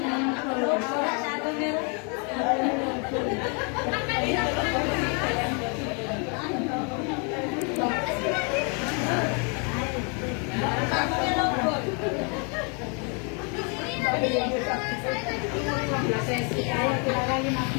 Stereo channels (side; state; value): right; quieter; 36.3 dB